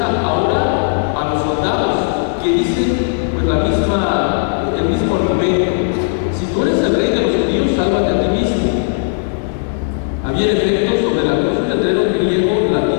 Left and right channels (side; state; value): right; silent; digital silence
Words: ahora a los soldados que dicen pues el mismo argumento: si tú eres el rey de los judíos, sálvate a ti mismo. Había en efecto sobre la cruz un letrero griego,